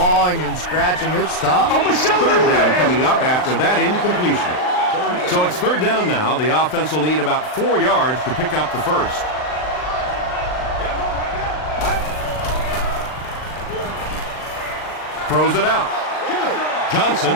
and scratching, it's tough. 3rd down coming up after that incompletion. So it's 3rd down now. The offense will need about 4 yards to pick up the 1st. Throws it out. Johnson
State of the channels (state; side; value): late; right; 39 ms